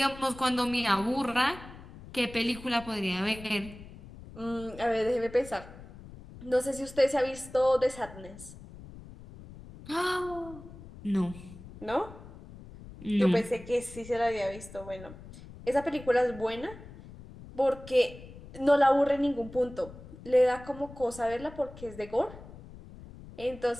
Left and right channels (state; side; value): noise; left; rumble, 16 dB below the sound